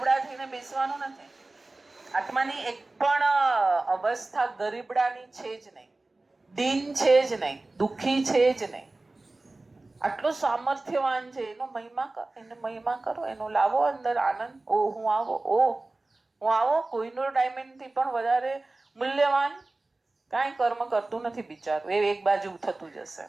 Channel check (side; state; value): left; quieter; 3.1 dB